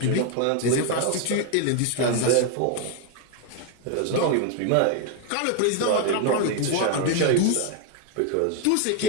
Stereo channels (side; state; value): both; different; correlation 0.01